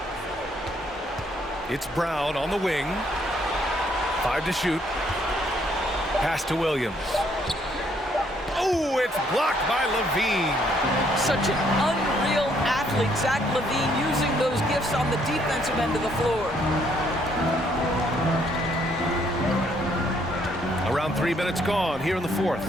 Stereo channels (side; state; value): both; normal; correlation 0.68